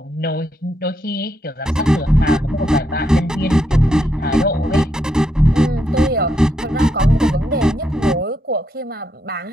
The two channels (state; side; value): normal; both; correlation 0.79